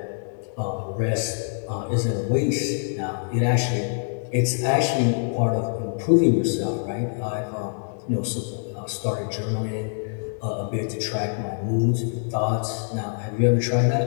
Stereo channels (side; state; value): right; silent; digital silence